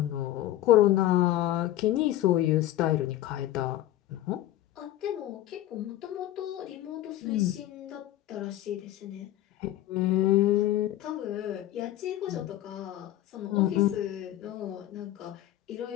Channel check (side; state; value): right; quieter; 14.1 dB